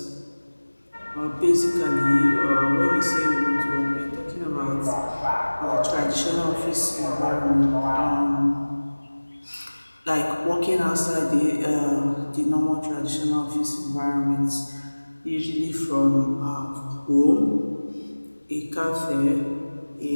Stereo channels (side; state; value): both; inverted; correlation -1.00